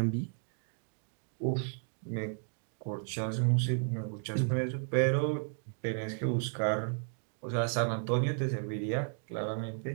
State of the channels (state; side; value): silent; left; 55 dB below the other